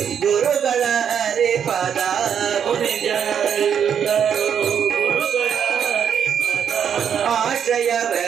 ಗುರುಗಳ ಹರಿಪದ ಮುನಿ ಜನರೆಲ್ಲರೂ ಗುರುಗಳ ಹರಿಪದ ಆಶ್ರಯವೇ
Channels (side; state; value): left; quieter; 8.1 dB